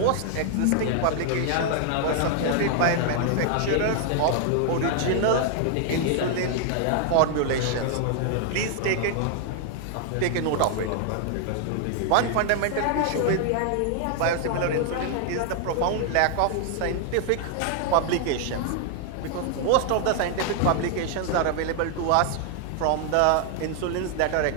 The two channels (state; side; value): different; both; correlation 0.00